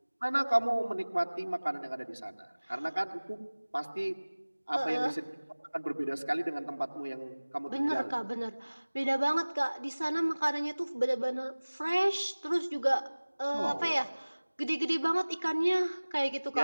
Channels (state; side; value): inverted; both; correlation -1.00